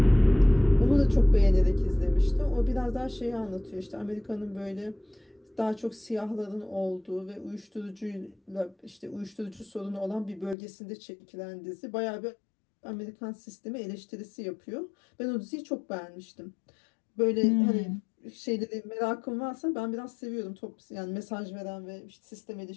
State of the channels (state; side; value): drops out; right; at 10.6 s